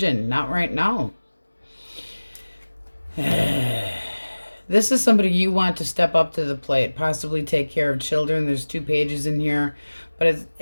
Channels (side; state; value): both; inverted; correlation -1.00